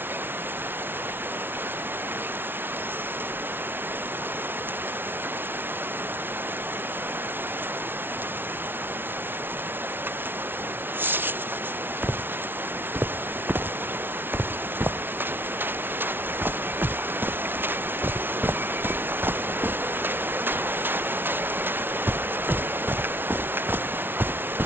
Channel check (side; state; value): left; late; 0.10 ms